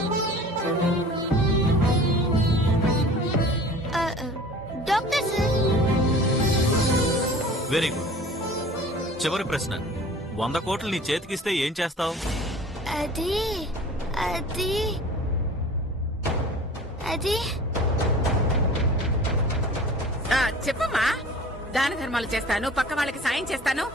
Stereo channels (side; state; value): both; normal; correlation 0.44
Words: Doctor sir. Very good. చివరి ప్రశ్న, 100 కోట్లు నీ చేతికిస్తే ఏం చేస్తావు? అది అది అది చెప్పమ్మా. దాన ధర్మాలు చేస్తాను, పక్క వాళ్ళకి సాయం చేస్తాను